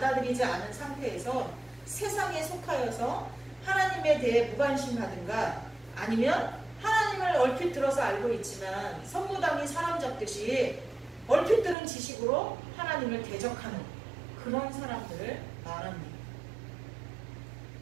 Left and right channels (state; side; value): drops out; left; at 11.8 s